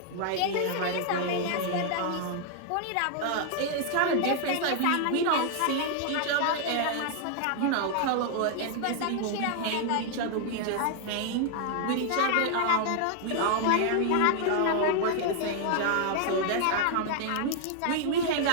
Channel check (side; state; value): both; different; correlation 0.00